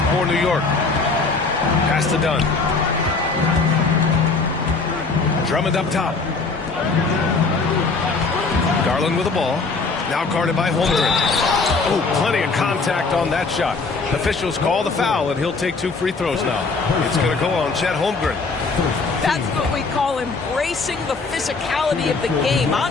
for New York. Pass to Dunn. Drummond up top. Garland with the ball. Now guarded by Holmgren. Oh, plenty of contact on that shot. Officials call the foul, and he'll take 2 free throws now. It's going to go on Chet Holmgren. That's what we call embracing the physicality of the game.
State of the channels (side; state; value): right; quieter; 4.1 dB